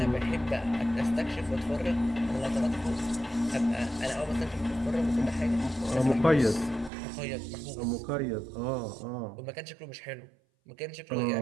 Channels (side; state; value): left; drops out; at 6.9 s